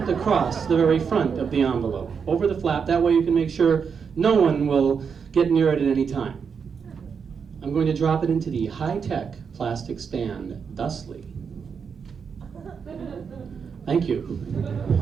across the very front of the envelope, over the flap. That way you can make sure no one will get near it at any time. I'm going to drop it into the high-tech plastic stand thusly. Thank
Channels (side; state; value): left; quieter; 6.3 dB